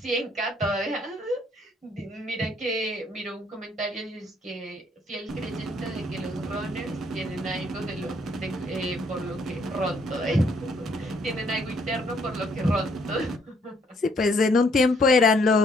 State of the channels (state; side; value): normal; both; correlation 0.67